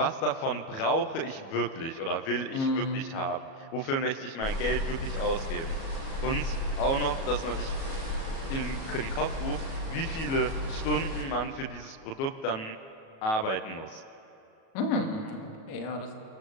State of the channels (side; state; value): right; late; 37 ms